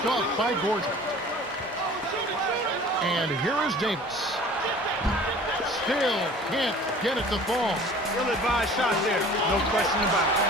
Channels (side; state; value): both; normal; correlation 0.46